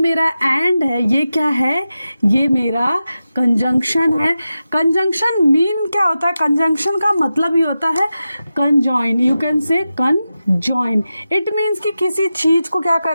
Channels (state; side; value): inverted; both; correlation -0.92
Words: एंड है ये क्या है? ये मेरा कंजंक्शन है। कंजंक्शन मीन क्या होता है? कंजंक्शन का मतलब ही होता है कंजॉइन। यू कैन से कंजॉइन। इट मीन्स कि किसी चीज को क्या